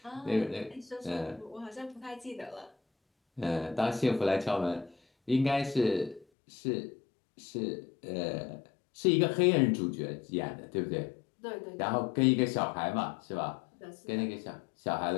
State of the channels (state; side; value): drops out; right; at 6.2 s